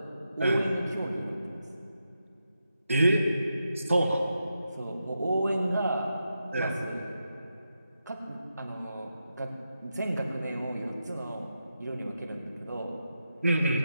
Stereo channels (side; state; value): both; inverted; correlation -0.87